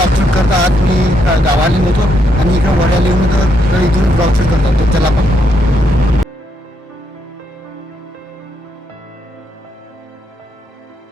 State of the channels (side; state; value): both; normal; correlation 0.76